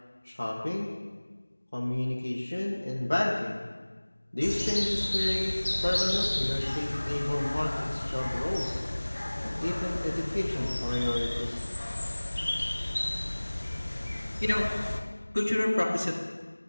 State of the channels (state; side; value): inverted; both; correlation -1.00